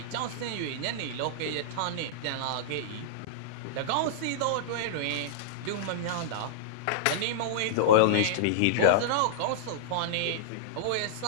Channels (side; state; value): both; different; correlation -0.02